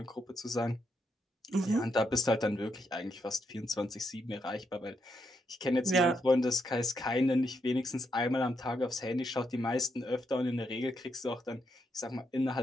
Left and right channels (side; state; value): both; normal; correlation 0.79